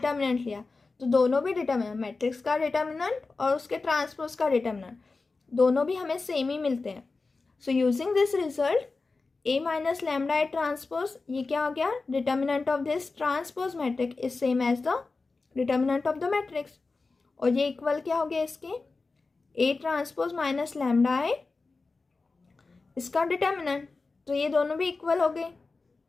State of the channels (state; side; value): quieter; right; 3.9 dB